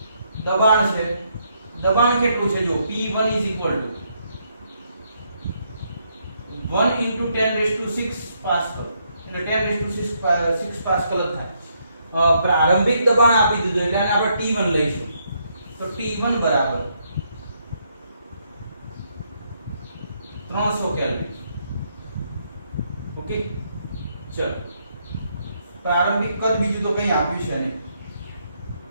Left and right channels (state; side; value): inverted; both; correlation -0.75